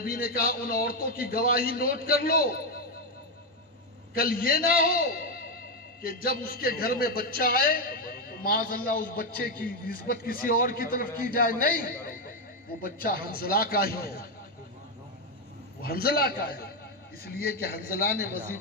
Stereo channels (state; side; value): normal; both; correlation 0.05